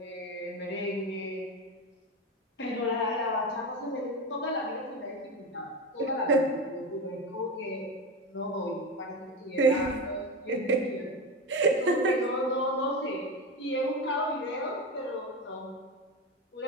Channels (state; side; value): normal; both; correlation 0.21